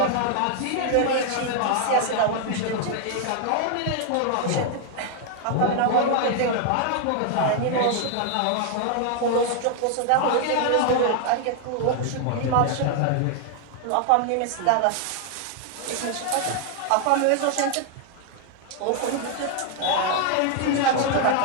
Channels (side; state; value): both; different; correlation 0.00